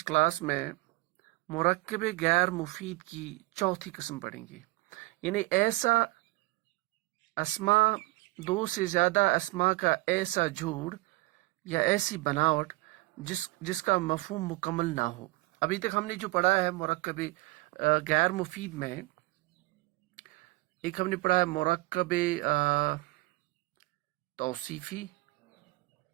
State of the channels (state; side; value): quieter; left; 22.1 dB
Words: کلاس میں مرکب غیر مفید کی چوتھی قسم پڑھیں گے، یعنی ایسا اسما، دو سے زیادہ اسما کا ایسا جوڑ یا ایسی بناوٹ جس کا مفہوم مکمل نہ ہو۔ ابھی تک ہم نے جو پڑھا ہے مرکب غیر مفید میں، ایک ہم نے پڑھا ہے مرکب توصیفی،